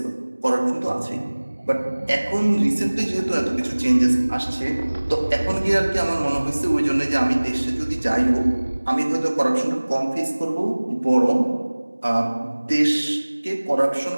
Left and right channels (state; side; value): inverted; both; correlation -1.00